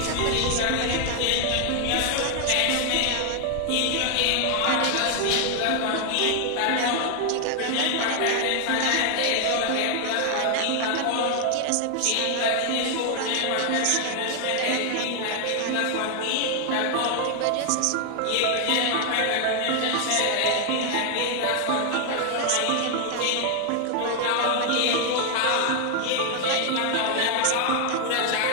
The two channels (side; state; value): both; different; correlation 0.00